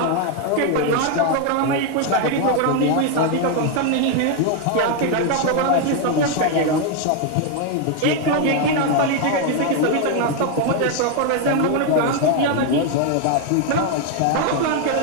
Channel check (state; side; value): different; both; correlation 0.01